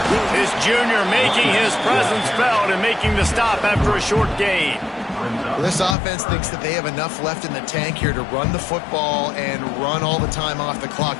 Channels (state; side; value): drops out; right; at 6.0 s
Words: This junior making his presence felt and making the stop after a short gain. Well, this offense thinks that they have enough left in the tank here to run the football and run all the time off the clock.